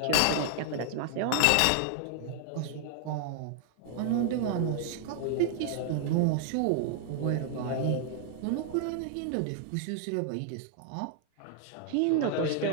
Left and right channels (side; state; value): both; different; correlation 0.00